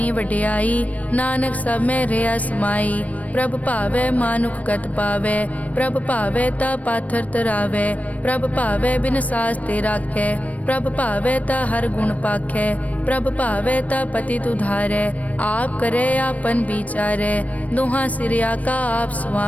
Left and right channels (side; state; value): right; late; 0.069 ms